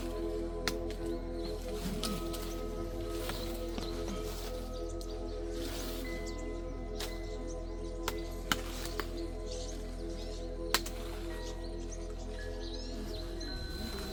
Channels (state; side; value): identical; both; correlation 1.00